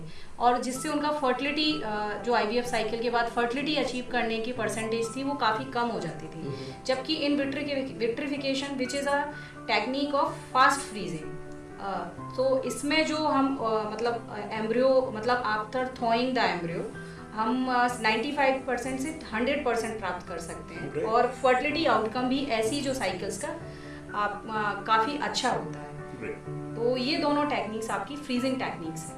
और जिससे उनका फर्टिलिटी जो IVF साइकिल के बाद फर्टिलिटी अचीव करने की परसेंटेज थी वो काफ़ी कम हो जाती थी। जबकि in vitrification which is a technique of fast freezing, तो इसमें जो हम मतलब एम्ब्रियो मतलब आफ्टर थॉइंग द एम्ब्रियो हम 95% से 100% प्राप्त कर सकते हैं और फर्टिलिटी आउटकम भी ऐसी जो साइकिल्स का आप काफ़ी अच्छा होता है। तो ये दोनों टेक्निक्स आपकी फ्रीजिंग टेक्निक्स हैं।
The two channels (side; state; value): both; identical; correlation 1.00